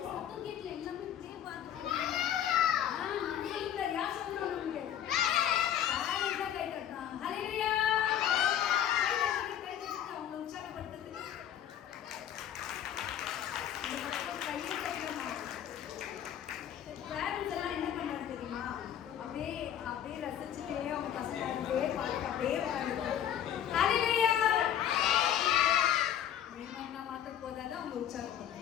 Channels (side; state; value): right; quieter; 10.3 dB